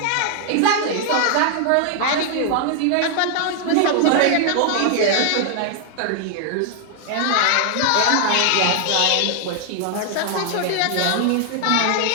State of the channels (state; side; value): different; both; correlation 0.00